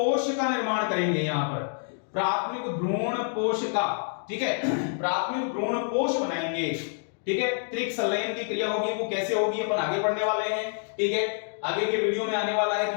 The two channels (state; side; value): silent; right; 60 dB below the other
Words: का निर्माण करेंगे। यहां पर प्राथमिक भ्रूण कोश का, ठीक है, प्राथमिक भ्रूण कोश बनाएंगे। ठीक है, त्रिक संलयन की क्रिया होगी, वो कैसे होगी अपन आगे पढ़ने वाले हैं। ठीक है, आगे के वीडियो में आने वाला है